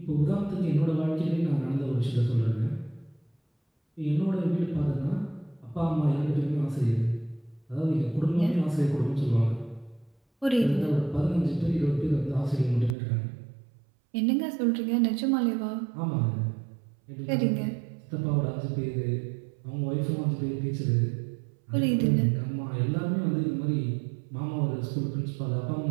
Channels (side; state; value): left; drops out; at 13.0 s